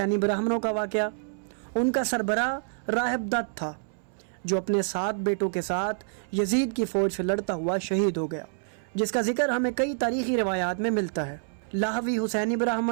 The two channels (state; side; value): silent; left; 60 dB below the other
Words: ब्राह्मणों का वाक़या। उनका सरबराह राहिब दत्त था जो अपने 7 बेटों के साथ यजीद की फ़ौज से लड़ता हुआ शहीद हो गया, जिसका जिक्र हमें कई तारीख़ी रिवायात में मिलता है। लाहवी हुसैनी